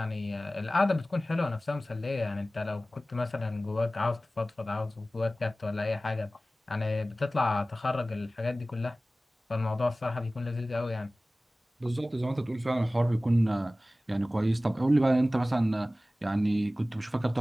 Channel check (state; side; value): normal; both; correlation 0.97